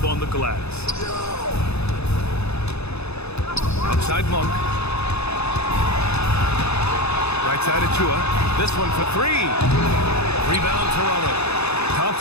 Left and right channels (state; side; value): late; right; 0.79 ms